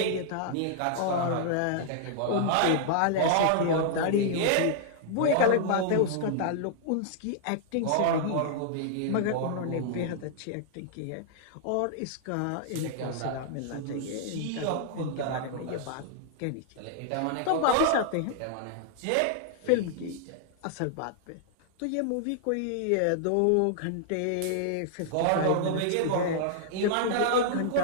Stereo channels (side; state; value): both; different; correlation -0.01